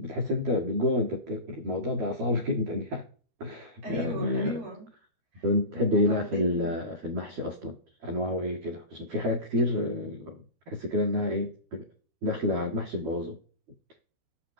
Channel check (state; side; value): late; left; 12 ms